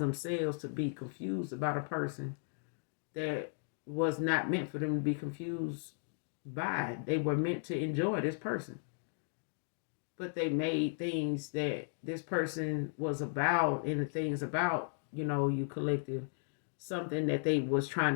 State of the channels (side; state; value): right; silent; digital silence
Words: to be confused about a person that was not meant for them to be confused by. They were meant to enjoy this person. But they made things that this person was about, and the things about, you collective, something that they was trying